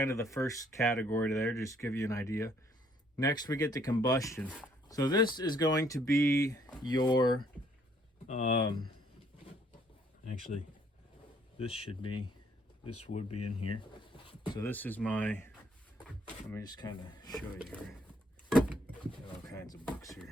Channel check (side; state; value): both; normal; correlation 0.65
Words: of the first category there, just to give you an idea. Next we get to combustion. So this is going to be your actually this would be in here. So this is my, let me just kind of show you here. Got all kinds of books